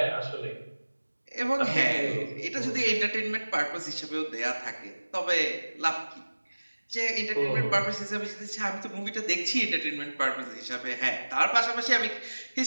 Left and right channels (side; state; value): both; inverted; correlation -1.00